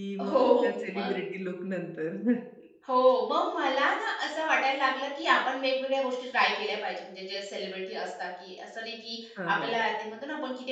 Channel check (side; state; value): both; identical; correlation 1.00